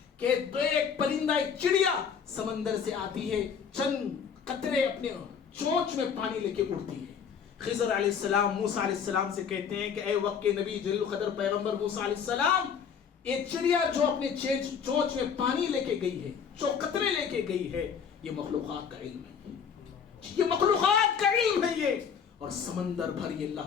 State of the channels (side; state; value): right; quieter; 7.0 dB